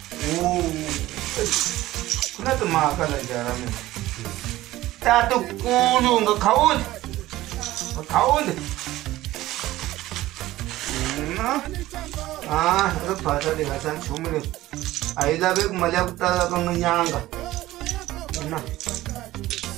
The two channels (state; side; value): quieter; left; 16.3 dB